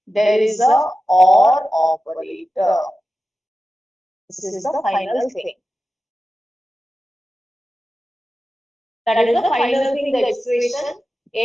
there is a or operator. This is the final thing. That is the final thing, the expression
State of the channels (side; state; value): both; normal; correlation 0.93